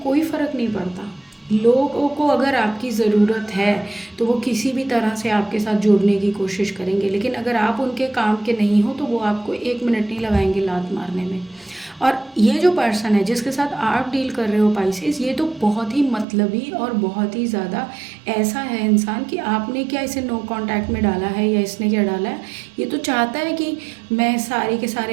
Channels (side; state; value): left; drops out; at 16.2 s